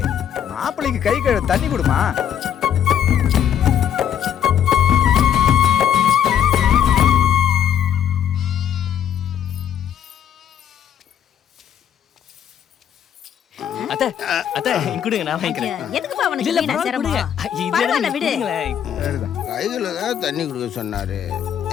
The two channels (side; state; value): right; quieter; 9.3 dB